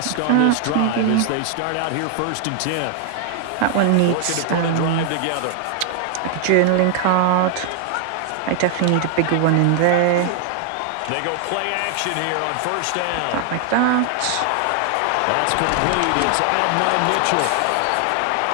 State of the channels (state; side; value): different; both; correlation 0.00